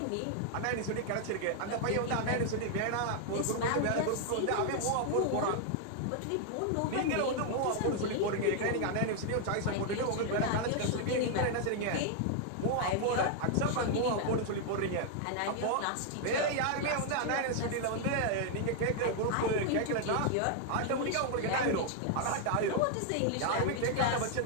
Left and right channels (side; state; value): both; different; correlation 0.00